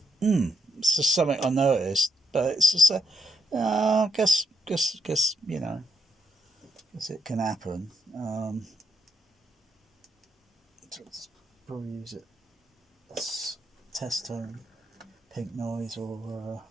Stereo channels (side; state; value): both; normal; correlation 0.79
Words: it's just something I noticed, but it's just guess you know, guess it can happen. So let's probably use it as test tone, pink noise, or